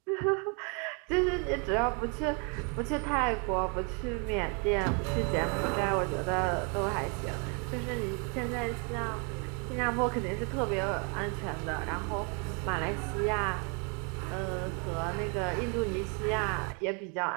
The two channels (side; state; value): left; quieter; 35.7 dB